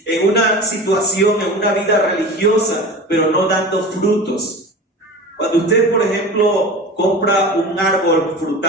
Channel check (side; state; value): both; normal; correlation 0.33